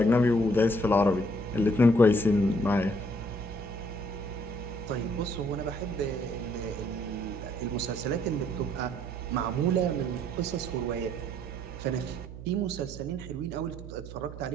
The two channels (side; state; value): right; noise; hum, 12 dB below the sound